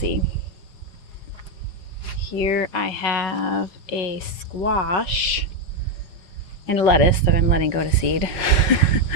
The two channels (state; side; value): late; right; 5.3 ms